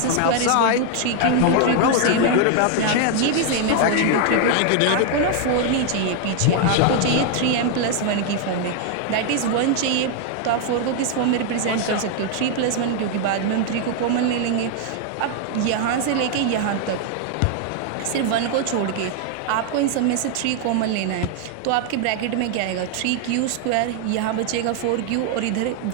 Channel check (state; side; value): different; both; correlation 0.00